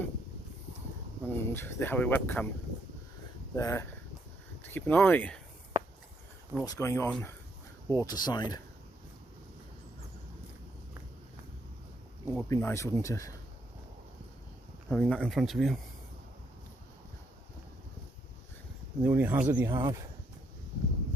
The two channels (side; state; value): both; normal; correlation 0.74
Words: and they have a webcam there to keep an eye on what's going on waterside. It would be nice, wouldn't it, having that in front of you? And the only hazard you have